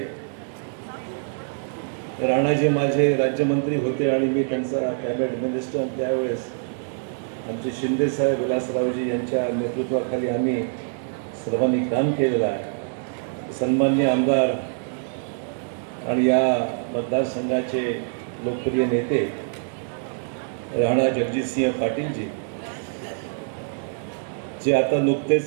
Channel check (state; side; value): silent; left; digital silence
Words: राणाजी माझे राज्यमंत्री होते आणि मी त्यांचा कॅबिनेट मिनिस्टर, त्यावेळेस आमचे शिंदे साहेब, विलासरावजी यांच्या नेतृत्वाखाली आम्ही सर्वांनी काम केलेलं आहे. सन्माननीय आमदार आणि या मतदारसंघाचे लोकप्रिय नेते राणा जगजितसिंह पाटीलजी, जे आता